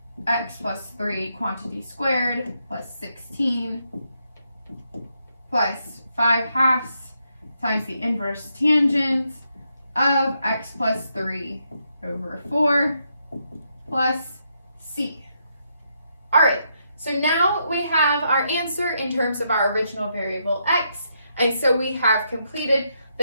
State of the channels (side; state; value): both; inverted; correlation -0.79